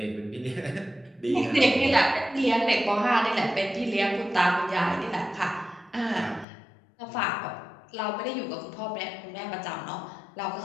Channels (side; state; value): right; drops out; at 6.5 s